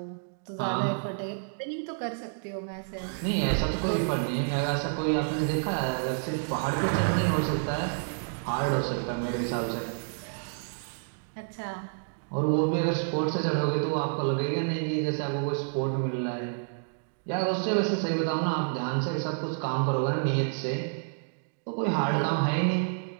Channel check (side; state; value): left; silent; digital silence